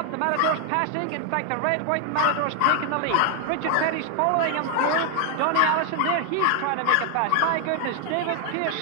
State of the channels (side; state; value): both; different; correlation 0.00